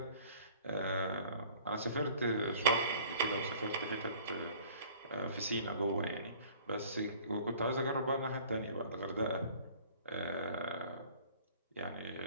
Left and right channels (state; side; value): inverted; both; correlation -0.51